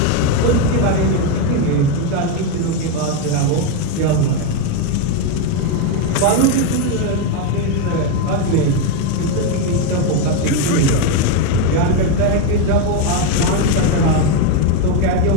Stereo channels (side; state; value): both; different; correlation 0.03